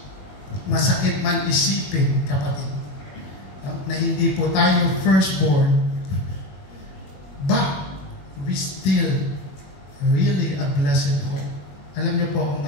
masakit man isipin, kapatid, na hindi po tayo firstborn, but we still really a blessed hope. Alam niyo po kung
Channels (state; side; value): late; right; 21 ms